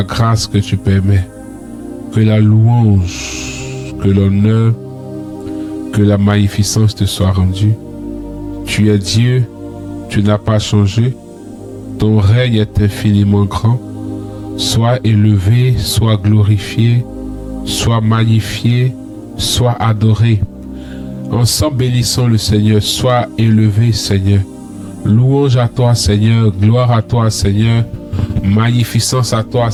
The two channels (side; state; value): both; identical; correlation 1.00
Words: grâce que tu permets. Que la louange, que l'honneur, que la magnificence te soit rendue. Tu es Dieu, tu n'as pas changé. Ton règne est infiniment grand. Sois élevé, sois glorifié, sois magnifié, sois adoré. Ensemble, bénissons le Seigneur. Sois élevé, Seigneur. Louange à toi, Seigneur. Gloire à toi, Seigneur. Magnificence à toi,